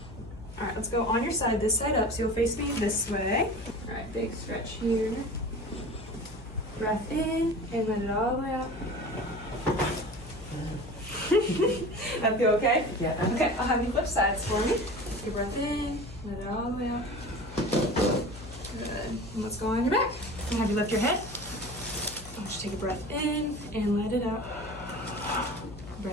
All right, let's go on your side, this side up, so you'll face me this way. All right, big stretch here. Breath in and let it all the way out. That feel okay? Yeah. Okay, I'll have you flip sides for me. Take a breath in, let it all the way out. Good. And let's go on your back. I'll have you lift your head. I'll just take a breath in and let it out.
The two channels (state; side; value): noise; left; hum, 15 dB below the sound